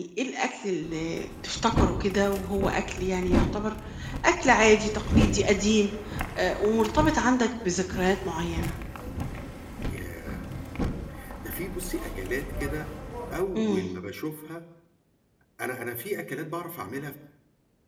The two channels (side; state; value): both; identical; correlation 1.00